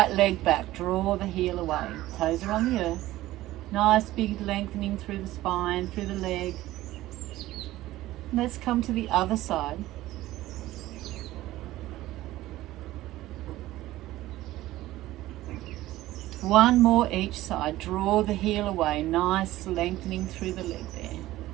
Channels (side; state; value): left; quieter; 16.1 dB